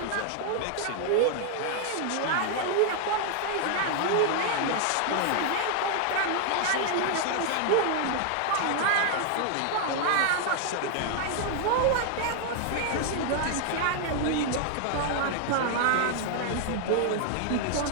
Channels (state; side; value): different; both; correlation 0.00